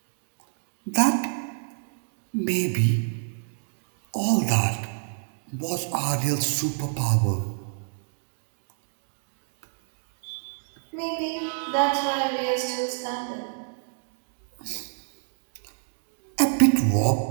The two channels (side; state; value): left; silent; digital silence